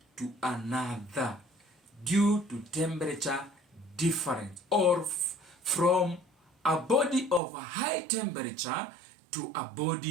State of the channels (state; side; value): drops out; left; at 7.4 s